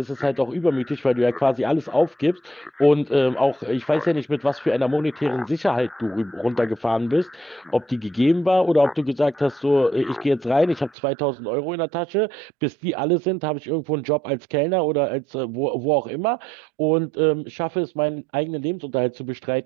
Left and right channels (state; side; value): drops out; left; at 11.0 s